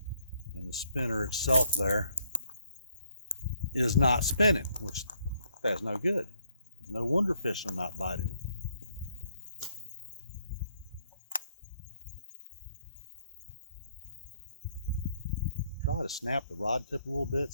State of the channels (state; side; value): inverted; both; correlation -0.70